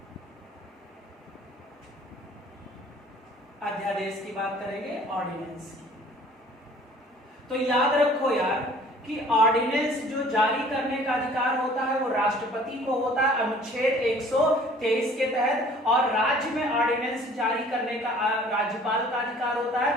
अध्यादेश की बात करेंगे, ऑर्डिनेंस की। तो याद रखो यार कि ऑर्डिनेंस जो जारी करने का अधिकार होता है वो राष्ट्रपति को होता है अनुच्छेद 123 के तहत, और राज्य में ऑर्डिनेंस जारी करने का राज्यपाल का अधिकार होता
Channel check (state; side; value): normal; both; correlation 0.52